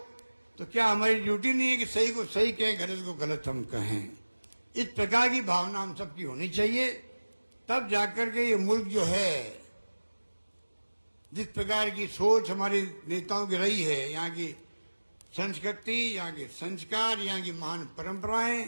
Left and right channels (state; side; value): inverted; both; correlation -1.00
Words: क्या हमारी ड्यूटी नहीं है कि सही को सही कहें, गलत को गलत हम कहें? इस प्रकार की भावना हम सबकी होनी चाहिए, तब जाकर के ये मुल्क जो है, जिस प्रकार की सोच हमारे नेताओं की रही है, यहाँ की संस्कृति, यहाँ के संस्कार, यहाँ की महान परंपराएं